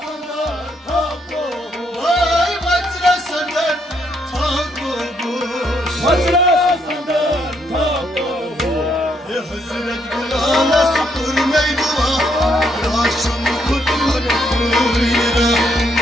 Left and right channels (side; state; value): both; normal; correlation 0.73